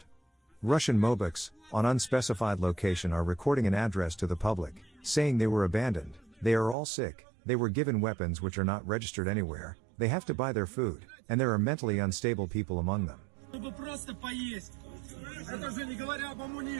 Russian mobiks, on unspecified location, are recording an address to the public, saying they were abandoned, they are all sick, they were given weapons which are not registered anywhere, they have to buy their food, and there are mentally unstable people among them. Чтобы просто поесть. Это же не говоря об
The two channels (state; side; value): drops out; left; at 6.8 s